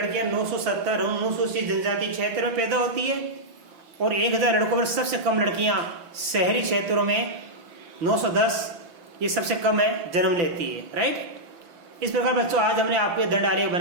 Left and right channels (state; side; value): late; left; 5.9 ms